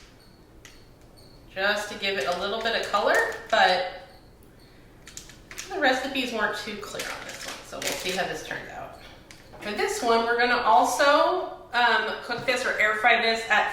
just to give it a little bit of color, but the recipes weren't too clear on this one, so we'll see how this turns out. For this one, we're going to also cook this or air fry this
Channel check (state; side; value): identical; both; correlation 1.00